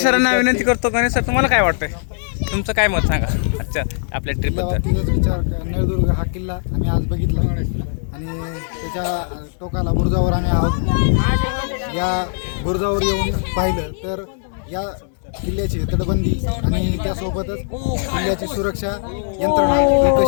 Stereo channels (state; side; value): silent; right; 66 dB below the other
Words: सरांना विनंती करतो, गणेश सर तुम्हाला काय वाटतंय, तुमचं काय मत सांगा अच्छा आपल्या ट्रिपबद्दल। विचार नळदुर्ग हा किल्ला आम्ही आज बघितला आणि त्याच्या टोकाला बुरुजावर आम्ही आहोत। या बुरुजावर येऊन पाहिलं तर या किल्ल्याची तटबंदी आणि त्यासोबतच किल्ल्याची सुरक्षा यंत्रणा